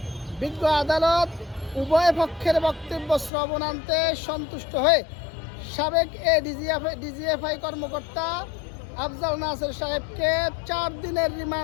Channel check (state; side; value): drops out; right; at 3.3 s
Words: বিজ্ঞ আদালত উভয় পক্ষের বক্তব্য শ্রবণান্তে সন্তুষ্ট হয়ে সাবেক ডিজিএফআই কর্মকর্তা আফজাল নাসের সাহেবকে 4 দিনের